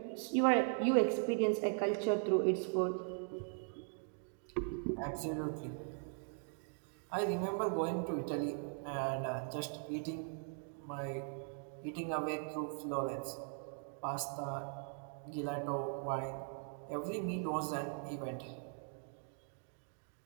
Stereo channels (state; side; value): silent; left; 51 dB below the other